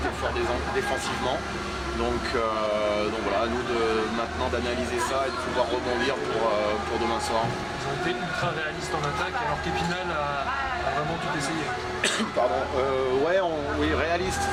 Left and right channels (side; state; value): both; identical; correlation 1.00